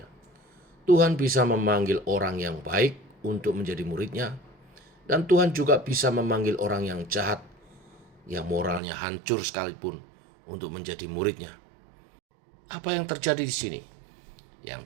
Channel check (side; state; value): left; drops out; at 8.8 s